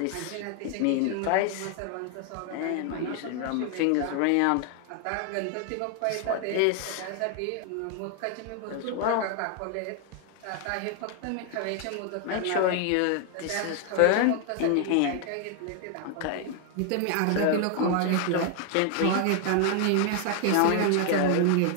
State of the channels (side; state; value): both; different; correlation 0.00